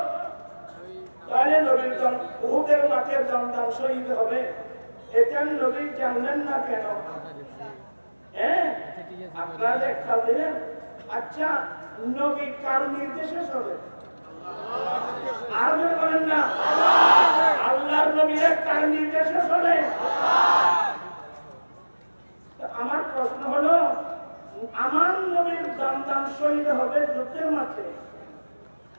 তাহলে নবীর উহুদের মাঠে সন্তান শহীদ হবে, এটা নবী জানলেন না কেন? হ্যাঁ, আপনারা একটা দিলেন। আচ্ছা, নবী কার নির্দেশে চলে? আর বলেন না, আল্লাহর নবীরা কার নির্দেশে চলে? আমার প্রশ্ন হলো, আমার নবীর সন্তান শহীদ হবে যুদ্ধের মাঠে,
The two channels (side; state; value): both; inverted; correlation -1.00